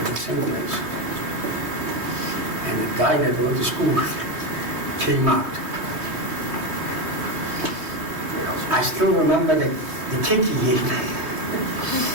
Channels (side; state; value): left; late; 3.2 ms